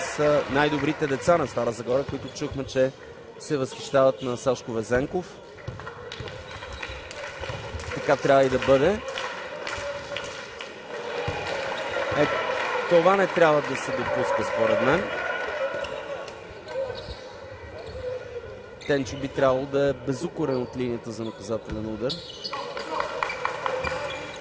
най-добрите деца на Стара Загора, които чухме, че се възхищават на Сашко Везенков. Така трябва и да бъде. Това не трябва да се допуска, според мен. Тенчо би трябвало да е безукорен от линията за наказателен удар.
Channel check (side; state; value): both; identical; correlation 1.00